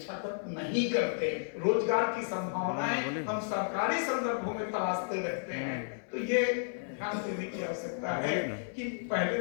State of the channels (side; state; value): right; silent; 56 dB below the other